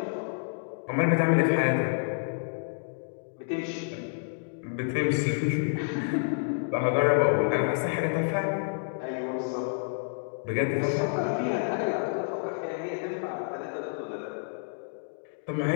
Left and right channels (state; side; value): silent; right; digital silence